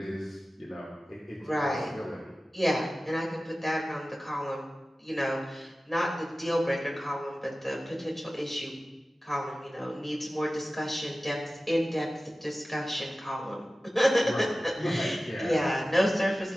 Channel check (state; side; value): normal; both; correlation 0.96